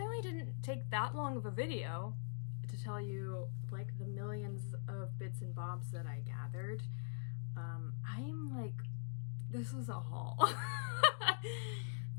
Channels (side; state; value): right; silent; digital silence